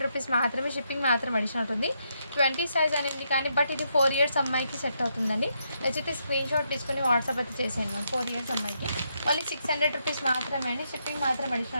రూపీస్ మాత్రమే, షిప్పింగ్ మాత్రం అడిషనల్ ఉంటుంది. 20 సైజ్ అనేది కానీ, బట్ ఇది 4 ఇయర్స్ అమ్మాయికి సెట్ అవుతుందండి. నచ్చితే స్క్రీన్ షాట్ తీసుకుని వాట్సాప్ అయితే చేసేయండి మ్యామ్. 4 ఇయర్స్ అమ్మాయికి ఓన్లీ 600 రూపీస్ మాత్రమే అండి, షిప్పింగ్ మాత్రం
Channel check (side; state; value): both; inverted; correlation -0.79